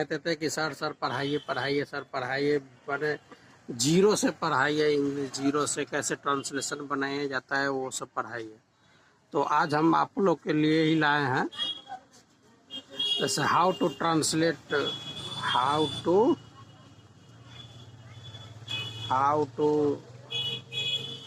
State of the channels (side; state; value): both; identical; correlation 1.00